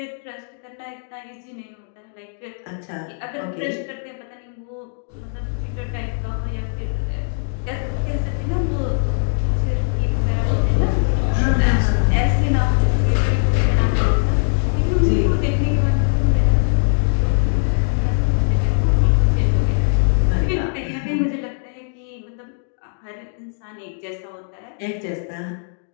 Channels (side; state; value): right; silent; digital silence